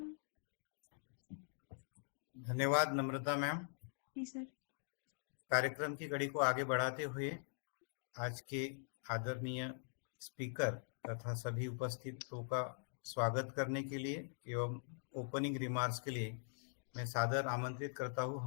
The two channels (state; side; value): silent; right; digital silence